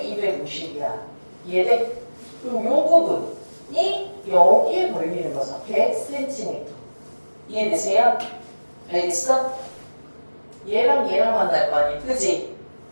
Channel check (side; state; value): both; inverted; correlation -1.00